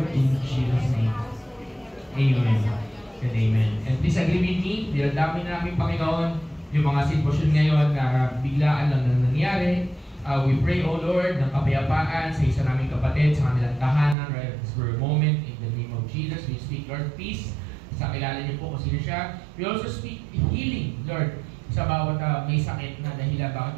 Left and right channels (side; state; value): left; drops out; at 14.2 s